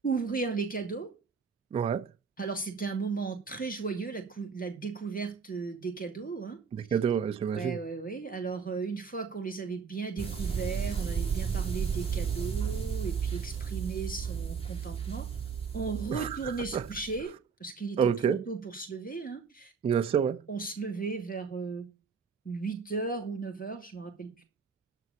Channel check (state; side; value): quieter; left; 5.7 dB